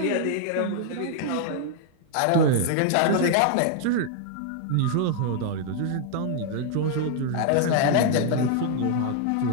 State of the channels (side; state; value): both; different; correlation 0.00